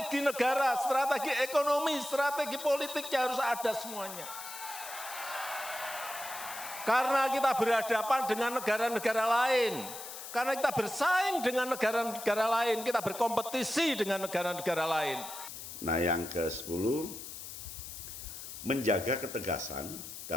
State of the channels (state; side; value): noise; left; hiss, 10 dB below the sound